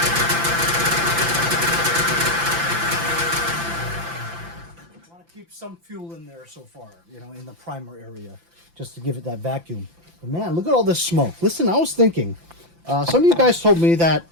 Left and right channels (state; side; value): late; left; 5.9 ms